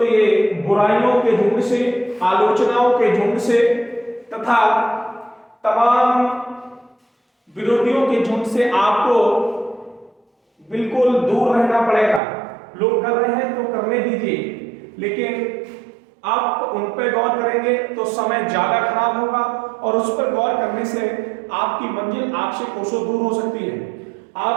ये बुराइयों के झुंड से, आलोचनाओं के झुंड से तथा तमाम विरोधियों के झुंड से आपको बिल्कुल दूर रहना पड़ेगा। लोग कर रहे हैं तो करने दीजिए, लेकिन आप उन पर गौर करेंगे तो समय ज्यादा खराब होगा और उस पर गौर करने से आपकी मंजिल आपसे कोसों दूर हो सकती है।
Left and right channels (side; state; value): left; drops out; at 12.2 s